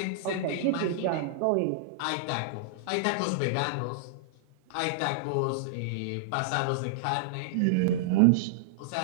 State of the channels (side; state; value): both; different; correlation -0.01